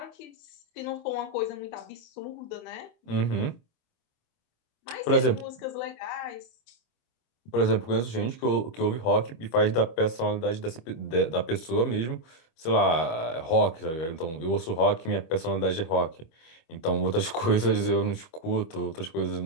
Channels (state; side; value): late; right; 25 ms